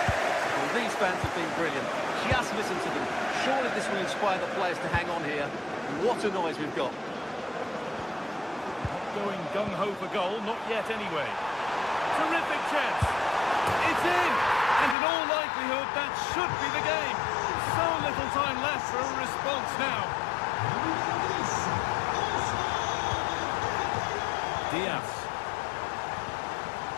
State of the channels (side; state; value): right; drops out; at 15.0 s